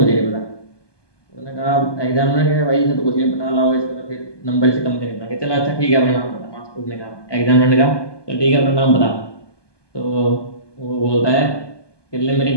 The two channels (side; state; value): right; late; 1.2 ms